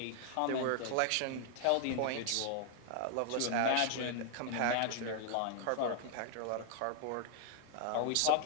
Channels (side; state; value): both; different; correlation 0.00